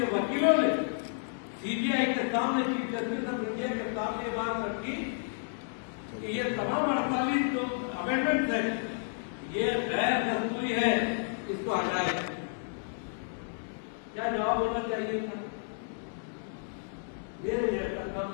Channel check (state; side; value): silent; right; digital silence